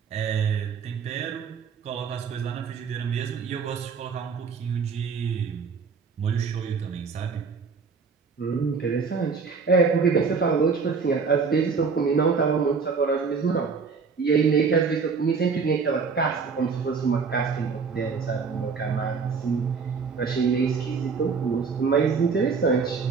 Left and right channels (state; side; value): quieter; left; 5.3 dB